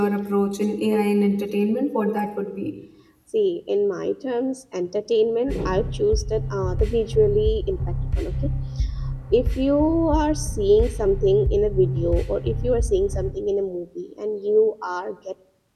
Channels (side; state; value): both; identical; correlation 1.00